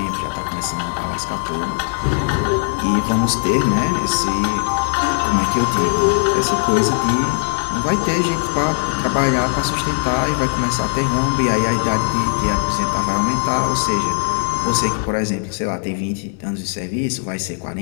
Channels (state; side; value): silent; right; digital silence